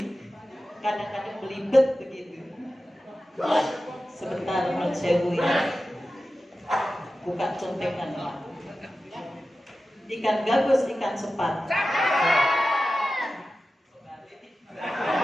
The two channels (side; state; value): both; normal; correlation 0.94